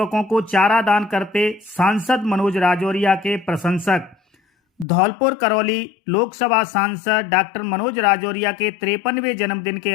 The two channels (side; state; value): right; drops out; at 4.9 s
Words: को चारा दान करते सांसद मनोज राजौरिया के प्रशंसक। धौलपुर करौली लोकसभा सांसद डॉक्टर मनोज राजौरिया के 53वें जन्मदिन के